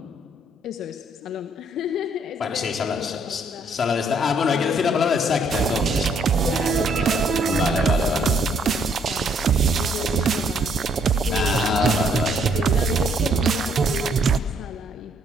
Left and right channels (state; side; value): normal; both; correlation 0.67